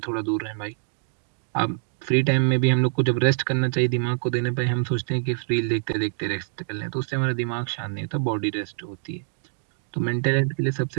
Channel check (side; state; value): left; silent; digital silence